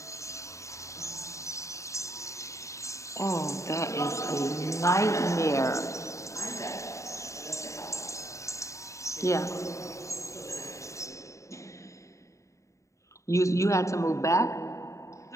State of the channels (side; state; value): right; late; 0.15 ms